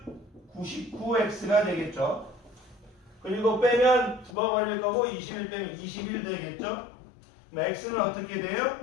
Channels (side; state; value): right; drops out; at 4.4 s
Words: 99x가 되겠죠. 그리고 빼면 죽어버릴 거고 21 빼면 21 되겠죠. 그럼 x는 어떻게 돼요?